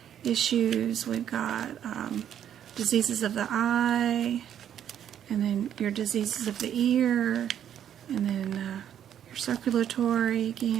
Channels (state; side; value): quieter; left; 9.8 dB